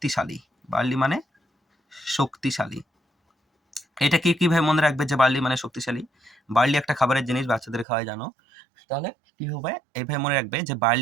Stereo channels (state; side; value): drops out; left; at 7.9 s